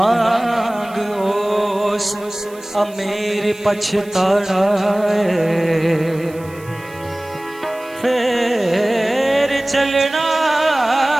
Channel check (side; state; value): right; noise; hiss, 24 dB below the sound